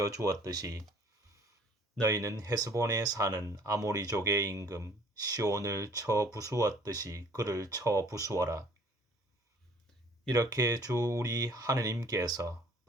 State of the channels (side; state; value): both; normal; correlation 0.55